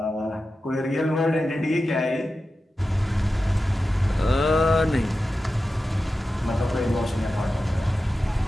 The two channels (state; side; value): normal; both; correlation 0.92